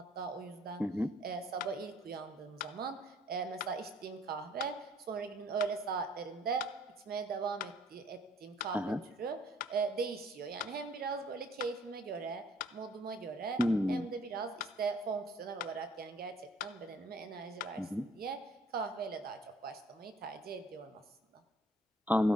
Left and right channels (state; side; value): normal; both; correlation 0.59